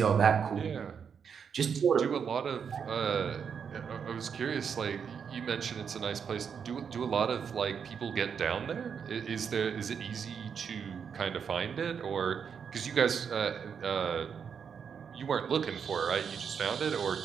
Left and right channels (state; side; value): quieter; left; 6.9 dB